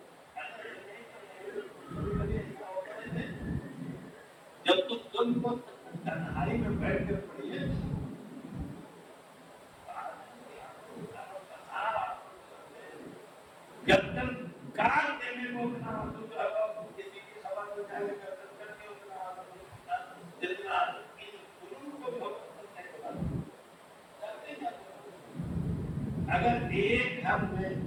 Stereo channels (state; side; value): identical; both; correlation 1.00